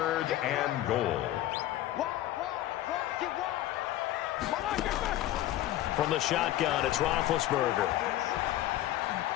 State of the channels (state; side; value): quieter; right; 14.4 dB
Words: and goal. From the shotgun, it's Roethlisberger.